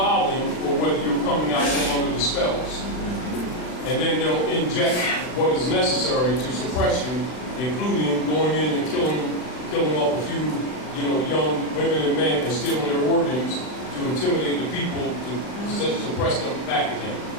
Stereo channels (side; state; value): right; late; 39 ms